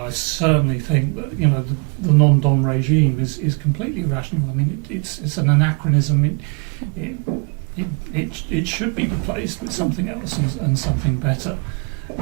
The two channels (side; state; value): left; quieter; 35.7 dB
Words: I certainly think that the non-dom regime is completely irrational. I mean, it's an anachronism. It should be replaced with something else and something better.